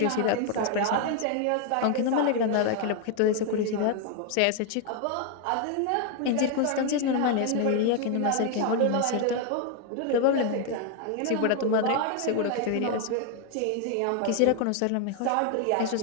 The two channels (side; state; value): both; different; correlation 0.00